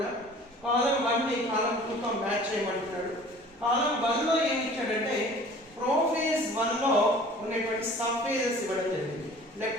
column 1 ని column 2 తో match చేయమంటున్నాడు. Column 1 లో ఏం ఇచ్చాడంటే prophase 1 లో ఉన్నటువంటి సబ్ ఫేజెస్ ఇవ్వడం జరిగింది.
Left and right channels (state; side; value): normal; both; correlation 0.47